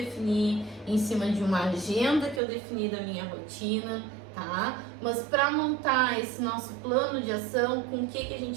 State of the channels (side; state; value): left; drops out; at 2.4 s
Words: em cima de uma agenda que eu defini da minha rotina, tá? Mas para montar esse nosso plano de ação, com o que a